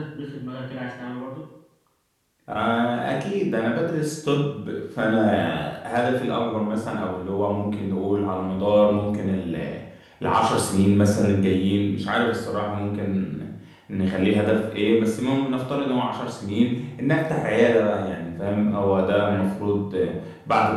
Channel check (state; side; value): identical; both; correlation 1.00